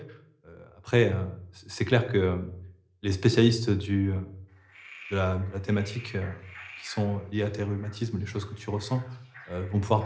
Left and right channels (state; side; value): identical; both; correlation 1.00